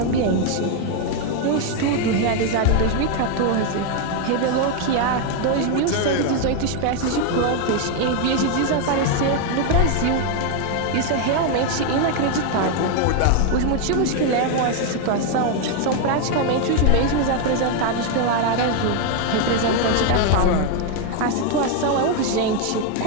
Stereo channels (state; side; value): different; both; correlation 0.01